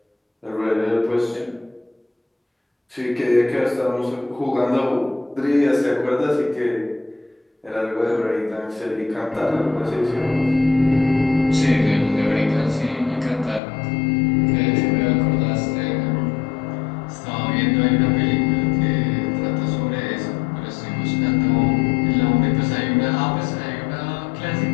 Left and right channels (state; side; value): drops out; right; at 13.6 s